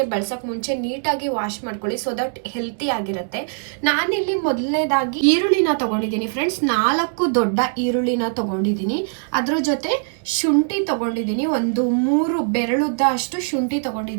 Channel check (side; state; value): left; silent; 65 dB below the other